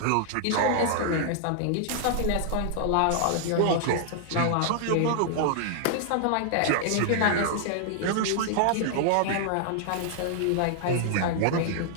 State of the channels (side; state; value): both; different; correlation -0.01